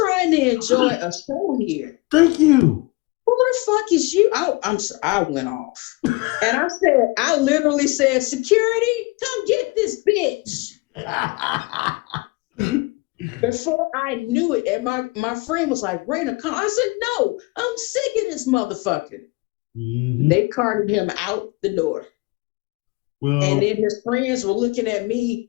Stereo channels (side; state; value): right; quieter; 25.5 dB